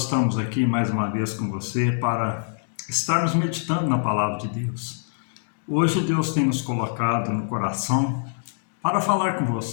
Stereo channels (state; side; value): silent; right; digital silence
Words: estamos aqui mais uma vez com você para estarmos meditando na palavra de Deus. Hoje Deus tem nos colocado no coração para falar com